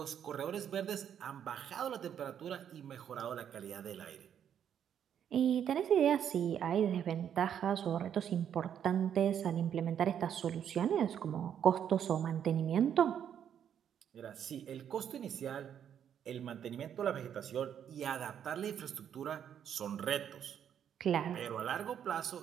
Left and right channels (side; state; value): left; quieter; 9.0 dB